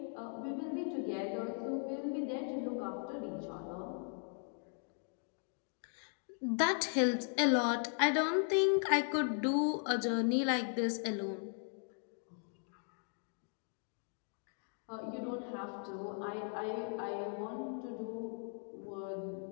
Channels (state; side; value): silent; right; 52 dB below the other